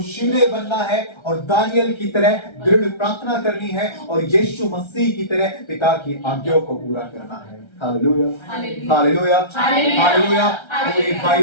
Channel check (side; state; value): right; late; 1.3 ms